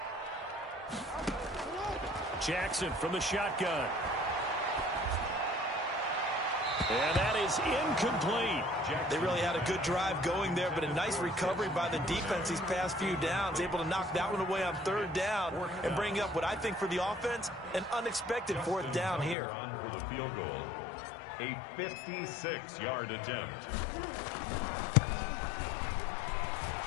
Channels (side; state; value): right; drops out; at 19.4 s